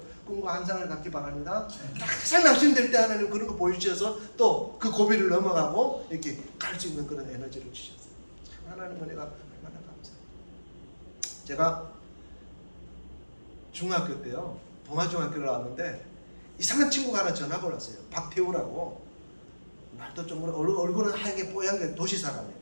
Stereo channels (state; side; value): inverted; both; correlation -1.00